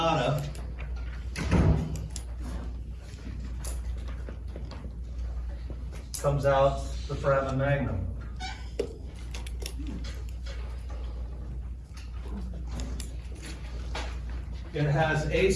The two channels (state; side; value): identical; both; correlation 1.00